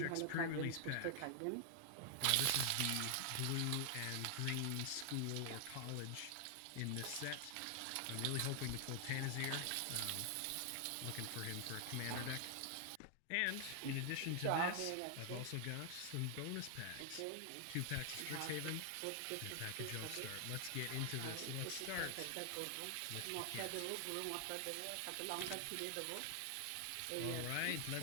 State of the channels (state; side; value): different; both; correlation 0.00